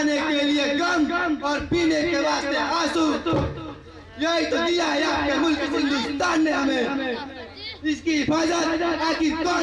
के लिए गम और पीने के वास्ते आंसू। यही तो दिया है आपके मुल्क हिंदुस्तान ने हमें। इसकी हिफाजत आखिर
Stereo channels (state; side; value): identical; both; correlation 1.00